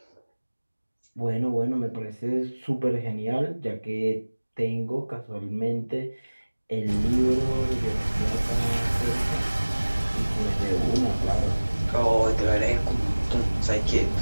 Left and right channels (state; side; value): inverted; both; correlation -1.00